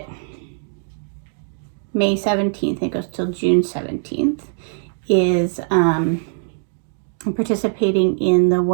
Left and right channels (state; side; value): silent; left; 65 dB below the other